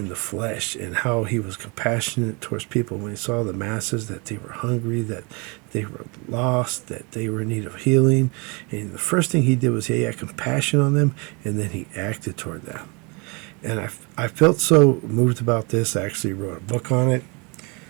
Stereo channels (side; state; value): left; quieter; 30.4 dB